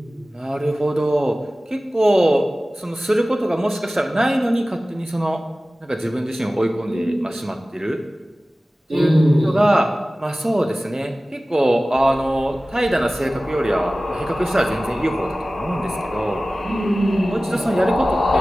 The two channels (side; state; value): both; normal; correlation 0.97